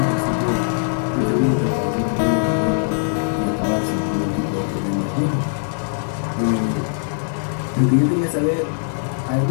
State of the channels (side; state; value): right; silent; digital silence